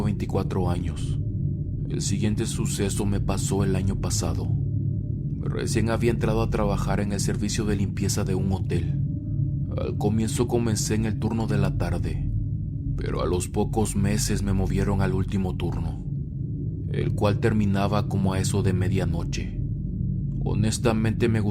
24 años. El siguiente suceso me pasó el año pasado. Recién había entrado a trabajar en el servicio de limpieza de un hotel. Al comienzo comencé en el turno de la tarde, pero a los pocos meses me movieron al último turno, el cual terminaba como a eso de medianoche. Honestamente me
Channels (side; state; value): both; identical; correlation 1.00